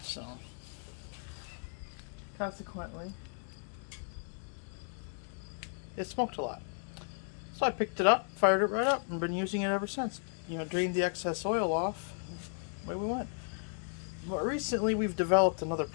So, consequently, it smoked a lot. So I picked it up, fired it right up, and been using it ever since. Drained the excess oil off, away we went. But recently we've developed another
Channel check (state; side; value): silent; right; 55 dB below the other